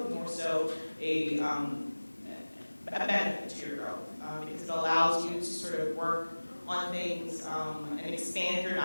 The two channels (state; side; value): inverted; both; correlation -1.00